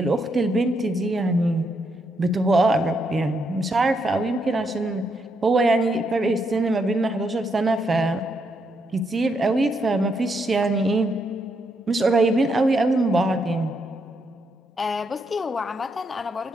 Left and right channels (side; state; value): both; normal; correlation 0.78